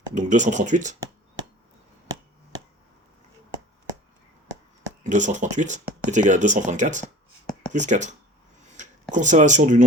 donc 238 est égal à 234 plus 4. Conservation du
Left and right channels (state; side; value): normal; both; correlation 0.43